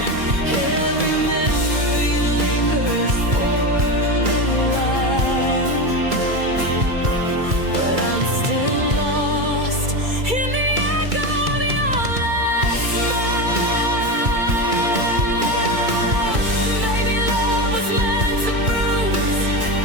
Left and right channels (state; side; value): late; left; 2.3 ms